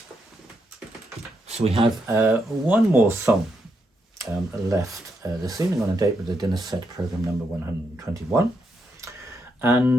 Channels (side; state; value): both; normal; correlation 0.81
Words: So we have one more song left this evening on a date with the dinner set program number 121.